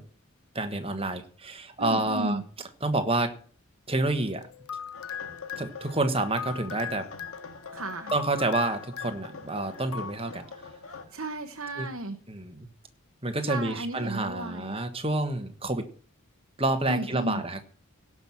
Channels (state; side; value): normal; both; correlation 0.30